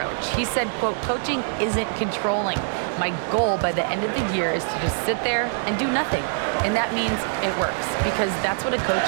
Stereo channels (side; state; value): left; silent; digital silence